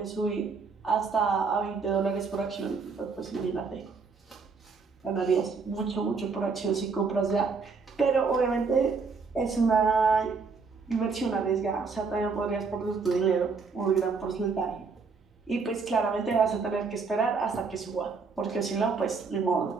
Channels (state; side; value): quieter; left; 4.8 dB